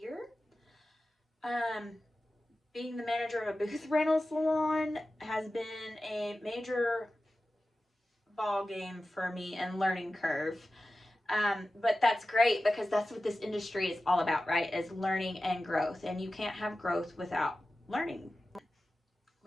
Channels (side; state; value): both; normal; correlation 0.94